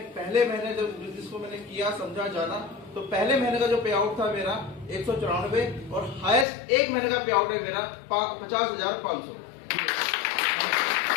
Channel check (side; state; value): right; drops out; at 6.5 s